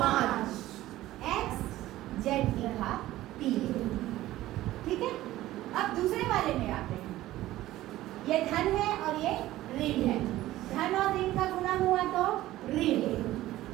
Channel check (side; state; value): left; quieter; 15.6 dB